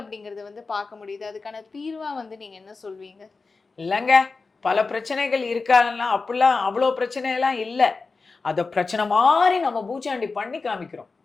வந்து பார்க்க முடியுது. அதுக்கான தீர்வா வந்து நீங்க என்ன சொல்வீங்க? இல்லைங்க, பல பிரச்சனைகள் இருக்கான்னா அப்படிலாம் அவ்வளோ பிரச்சனையெல்லாம் இல்லை. அதை பிரச்சனை மாதிரி நம்ம பூச்சாண்டி பண்ணி காமிக்கிறோம்.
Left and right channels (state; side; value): quieter; right; 4.2 dB